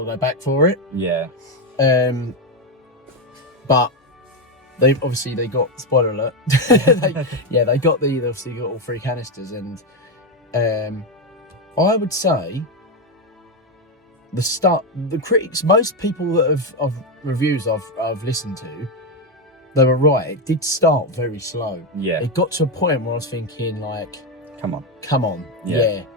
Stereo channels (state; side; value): normal; both; correlation 0.09